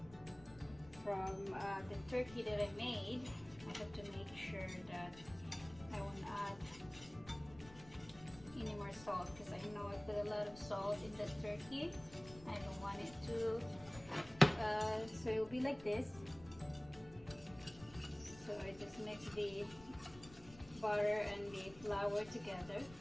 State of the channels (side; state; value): left; noise; rumble, 19 dB below the sound